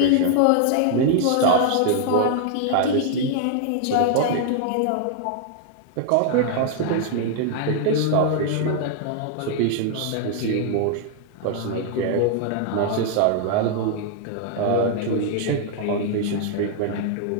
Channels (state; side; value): different; both; correlation 0.00